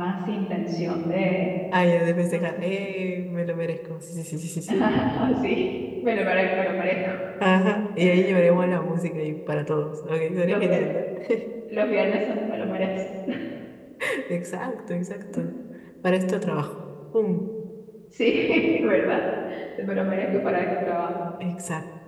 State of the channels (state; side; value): identical; both; correlation 1.00